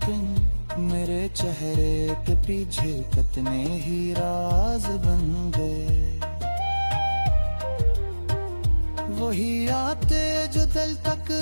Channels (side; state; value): both; inverted; correlation -1.00